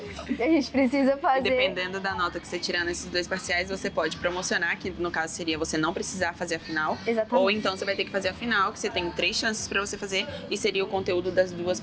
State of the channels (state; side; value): identical; both; correlation 1.00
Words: A gente precisa fazer... E dependendo da nota que você tirar nesses 2 parciais, você pode promocionar, que no caso seria você não precisar fazer a final. Exatamente. Ou então você vai ter que fazer a final, que você tem 3 chances para você fazer, e seria o conteúdo das 2